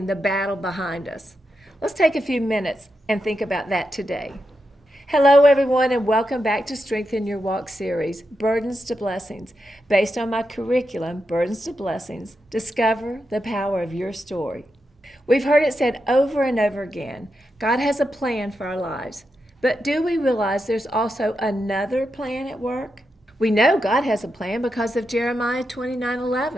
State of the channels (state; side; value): normal; both; correlation 0.86